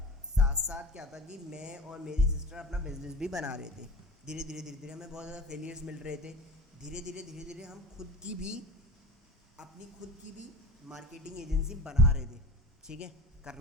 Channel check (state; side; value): normal; both; correlation 0.35